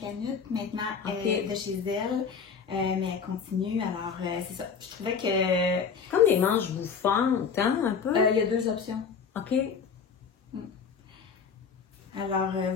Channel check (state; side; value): quieter; right; 6.2 dB